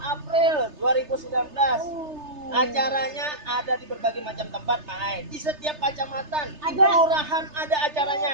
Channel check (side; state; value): left; late; 3.3 ms